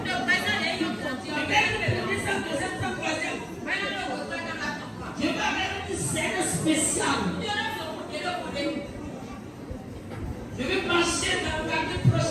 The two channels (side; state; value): both; identical; correlation 1.00